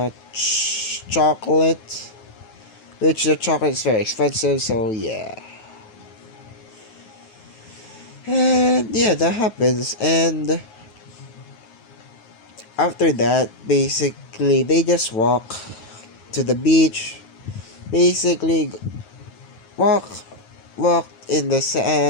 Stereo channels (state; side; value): late; right; 9.5 ms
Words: chocolate, which the chocolate is very expensive, so yeah. And yeah, that happens. And after that, basically, they just walk to the beach. Basically, walk, walk in the